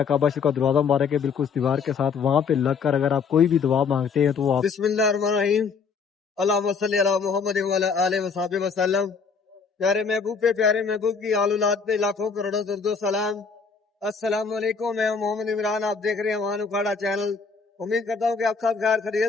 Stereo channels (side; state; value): right; quieter; 5.4 dB